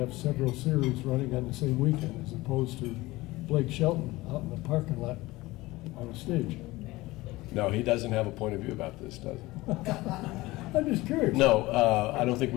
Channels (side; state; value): right; quieter; 19.8 dB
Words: several series running on the same weekend, as opposed to Blake Shelton out in the parking lot on a stage. No, he doesn't have a point of view about this, does he? I'm just curious. No, I don't think